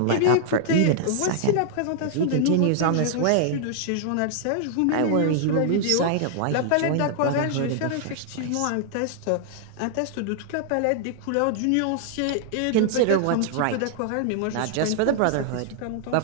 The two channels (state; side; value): different; both; correlation -0.01